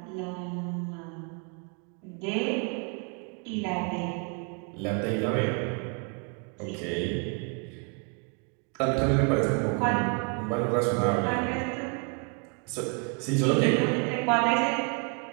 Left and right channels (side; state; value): left; quieter; 35.7 dB